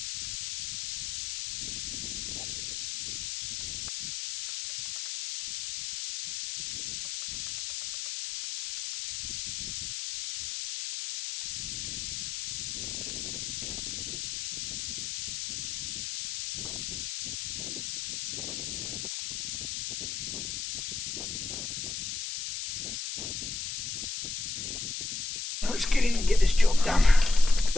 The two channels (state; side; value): noise; left; hiss, 4 dB below the sound